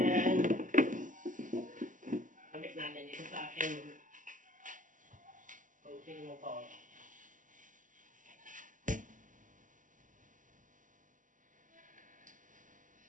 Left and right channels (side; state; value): left; late; 0.38 ms